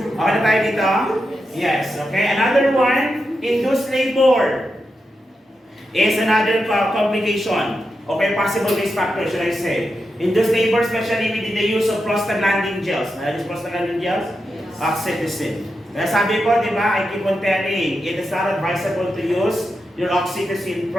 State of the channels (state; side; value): normal; both; correlation 0.87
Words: Okay na tayo dito? Yes. Okay. Another one, induced labor is another complication. Okay, possible risk factor, should I say. Induced labor, especially with the use of prostaglandin gels. Nalagis prostaglandin gels? Oxytocin. Kaya sabi ko, di ba, I keep on telling, it is not advisable to use your oxytocin